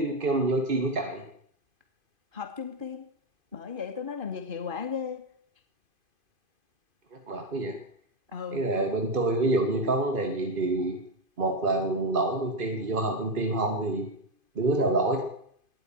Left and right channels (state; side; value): late; left; 2.5 ms